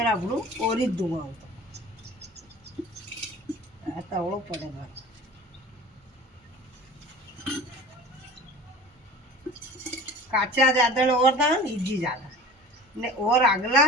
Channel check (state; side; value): normal; both; correlation 0.40